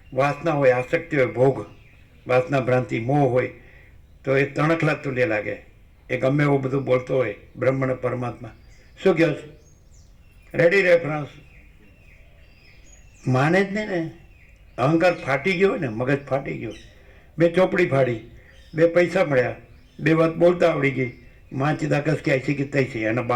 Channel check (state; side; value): identical; both; correlation 1.00